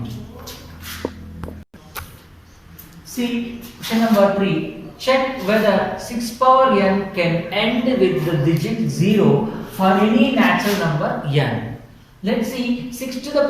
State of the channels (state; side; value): identical; both; correlation 1.00